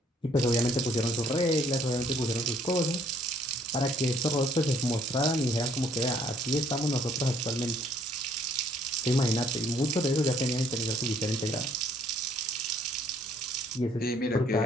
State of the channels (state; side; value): normal; both; correlation 0.63